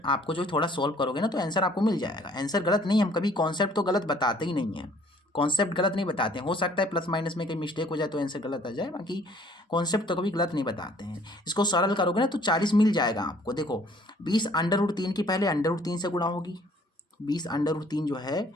आपको जो थोड़ा सॉल्व करोगे ना तो आंसर आपको मिल जाएगा। आंसर गलत नहीं, हम कभी कॉन्सेप्ट तो गलत बताते ही नहीं है, कॉन्सेप्ट गलत नहीं बताते हैं। हो सकता है प्लस माइनस में कहीं मिस्टेक हो जाए तो आंसर गलत आ जाए, बाकी कॉन्सेप्ट तो कभी गलत नहीं बताते हैं। इसको सरल करोगे ना तो 40 मिल जाएगा आपको। देखो 20 √3 की पहले √3 से गुणा होगी, 20 √3 जो है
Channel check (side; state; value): both; normal; correlation 0.58